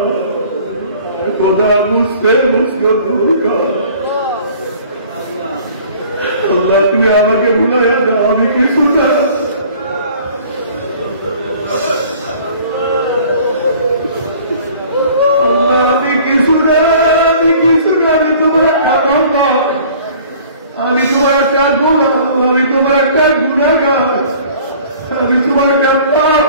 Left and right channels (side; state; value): both; inverted; correlation -0.50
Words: খোদা বুঝতে বুঝতে দূর কর। আল্লাহ তুমি আমাকে ভুলাইয়া দাও, আমি কিছু না। আমি কিছু না, আমি কিছু না, আমি তোমার একটা বাবা, আমি তোমার একটা গোলাম, আমি তোমার একটা গুনাহগার, আমি তোমার একটা